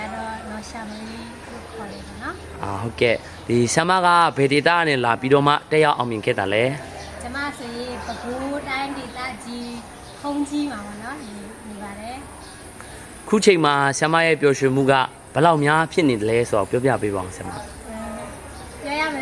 တော့နော်ရှာမလေးလို့ခေါ်တယ်ပေါ့နော်ဟုတ်ကဲ့ဒီဆ iam မကဘယ်ဒေတာနဲ့လာပြီးတော့မှတက်ရောက်အောင်မြင်ခဲ့တာလဲကျမဆိုရင်ပဲခူးတိုင်းဒေသကြီးခုံးကြီးမှာပေါ့နော်နေပါတယ်ခုချိန်မှာဆ iam မရဲ့ပျော်ရွှင်မှုကဘယ်လောက်များဖြစ်နေတယ်လဲဆိုတော့ပြောပြပေးပါအောင်ဆ iam မပြောရမယ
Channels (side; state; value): both; identical; correlation 1.00